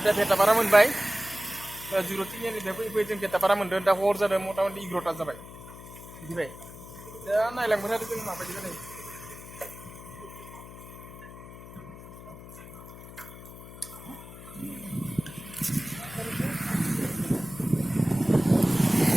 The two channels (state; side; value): noise; left; hum, 15 dB below the sound